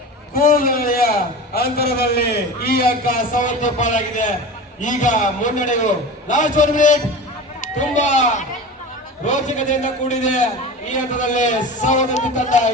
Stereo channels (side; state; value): both; normal; correlation 0.32